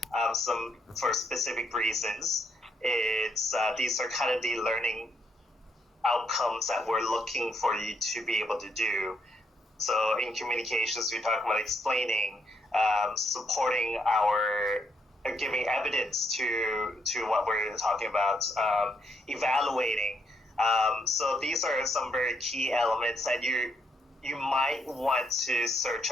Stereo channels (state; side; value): normal; both; correlation 0.76